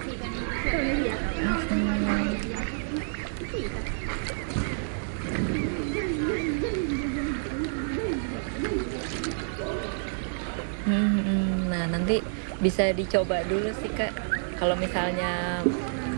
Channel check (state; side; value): silent; left; digital silence